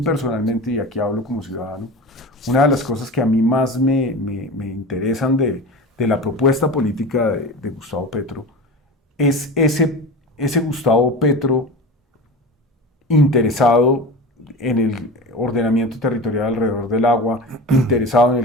personalmente, y aquí hablo como ciudadano, una de las cosas que a mí más me interesan de la propuesta política de Gustavo Petro es ese Gustavo Petro interesado en el ordenamiento territorial alrededor del agua, interesado en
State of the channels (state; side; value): normal; both; correlation 0.31